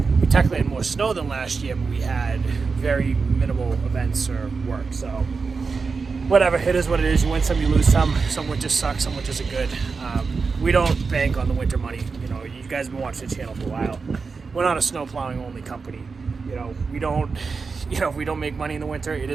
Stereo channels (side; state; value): left; quieter; 4.8 dB